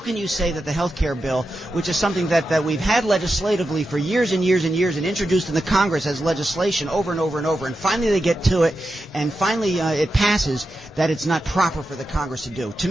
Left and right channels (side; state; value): both; normal; correlation 0.89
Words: you say that the health care bill, which is something that we've had legislatively for years and years and years and introduced in the Congress as legislation over and over and over, and finally they get to it, and finally it passes, that it's not proper for the Congress to do. To